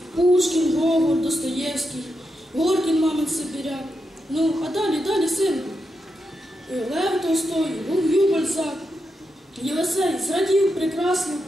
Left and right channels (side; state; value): both; normal; correlation 0.86